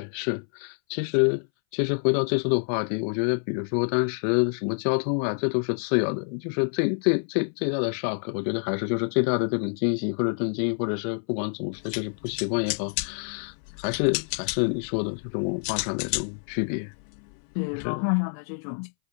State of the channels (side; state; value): right; silent; 60 dB below the other